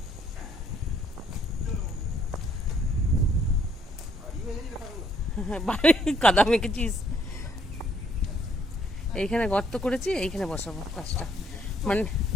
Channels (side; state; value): both; normal; correlation 0.67